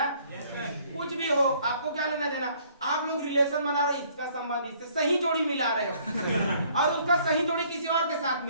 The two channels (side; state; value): both; inverted; correlation -0.61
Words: कुछ भी हो, आपको क्या लेना देना? आप लोग रिलेशन बना रहे, इसका संबंध इससे, सही जोड़ी मिला रहे हो और उसका सही जोड़ी किसी और के साथ